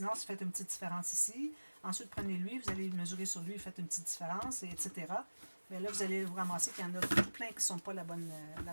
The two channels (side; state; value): both; inverted; correlation -1.00